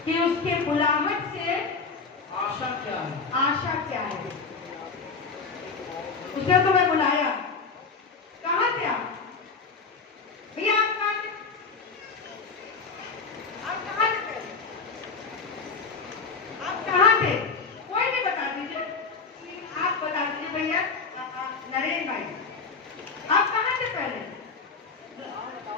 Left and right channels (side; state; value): right; quieter; 4.8 dB